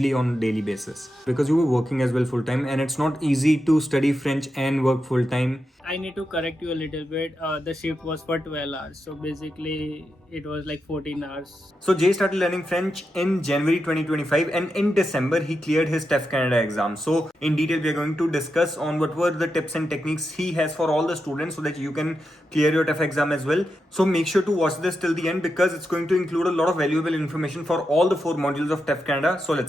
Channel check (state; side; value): normal; both; correlation 0.87